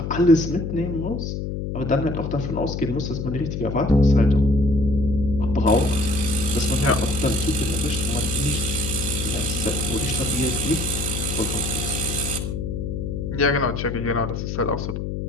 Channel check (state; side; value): noise; left; hum, 4 dB below the sound